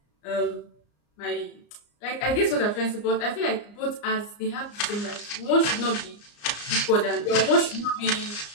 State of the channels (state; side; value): late; right; 34 ms